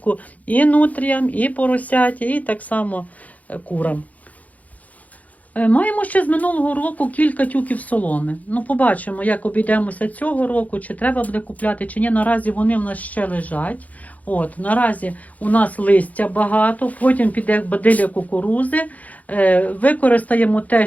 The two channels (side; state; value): right; late; 0.074 ms